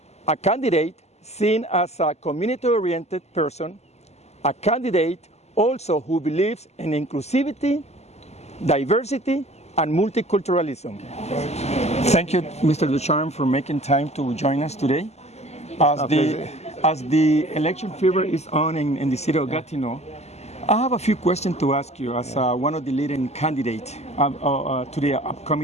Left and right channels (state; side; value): late; right; 0.32 ms